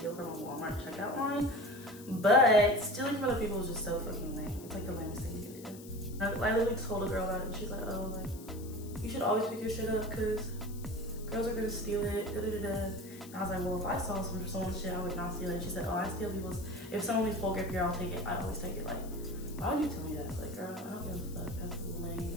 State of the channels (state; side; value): noise; left; hiss, 18 dB below the sound